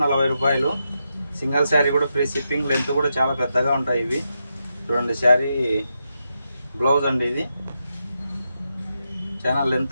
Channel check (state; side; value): inverted; both; correlation -0.85